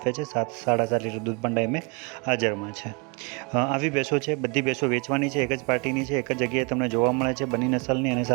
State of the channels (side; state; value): left; quieter; 31.2 dB